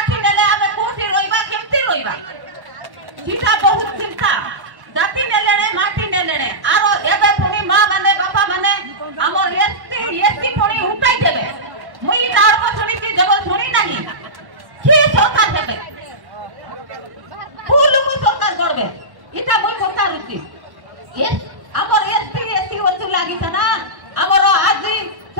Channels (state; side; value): late; left; 1.1 ms